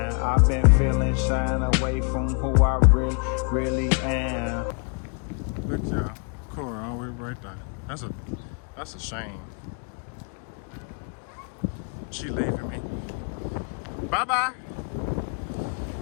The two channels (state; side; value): quieter; right; 39.8 dB